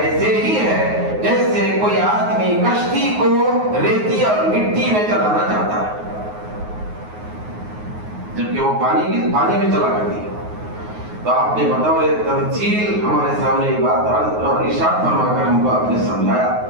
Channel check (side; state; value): left; late; 9.5 ms